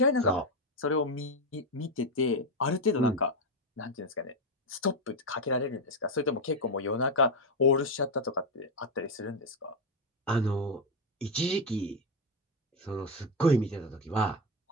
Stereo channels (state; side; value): normal; both; correlation 0.08